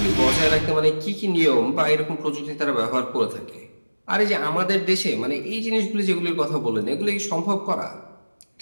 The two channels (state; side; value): inverted; both; correlation -1.00